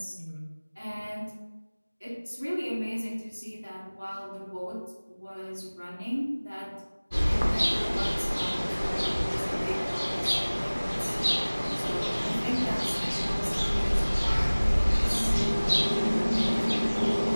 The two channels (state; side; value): inverted; both; correlation -1.00